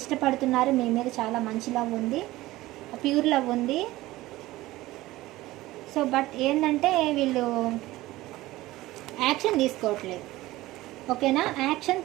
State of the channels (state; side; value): quieter; left; 17.6 dB